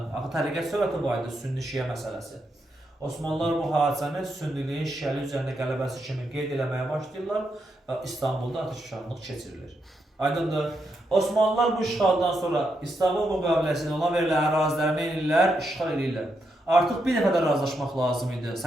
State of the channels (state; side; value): normal; both; correlation 0.82